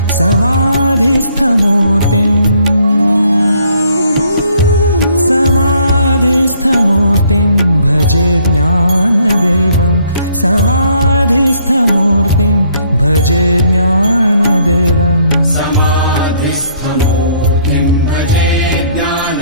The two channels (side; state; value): both; inverted; correlation -0.65